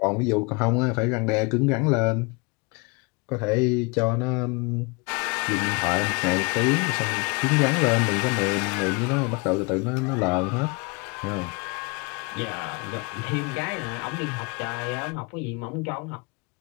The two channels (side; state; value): right; quieter; 29.4 dB